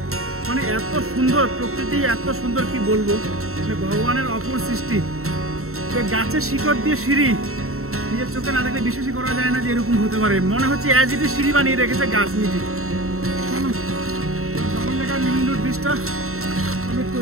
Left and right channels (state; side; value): late; left; 0.63 ms